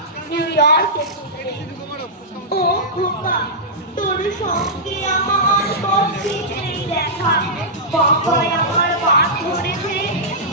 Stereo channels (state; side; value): normal; both; correlation -0.13